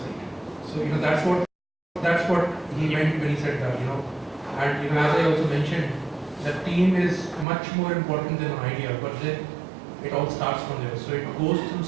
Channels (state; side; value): drops out; left; at 7.5 s